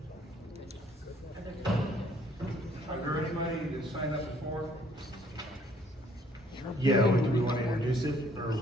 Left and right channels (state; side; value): normal; both; correlation 0.62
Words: Are there anybody that signed up before? Yeah, do we want to introduce it, or